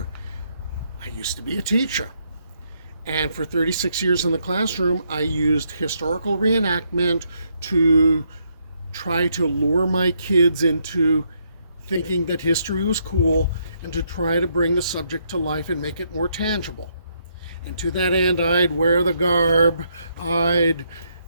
I used to be a teacher, and for 36 years in the classroom, I used historical reenactment to try to lure my kids into thinking that history was cool and to try to bring the subject to life and make it more tangible. And to that end, I'd wear the garb, I'd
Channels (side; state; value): both; inverted; correlation -0.75